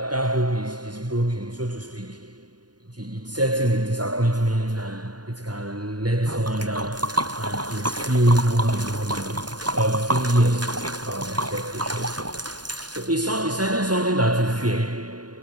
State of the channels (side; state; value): left; late; 0.70 ms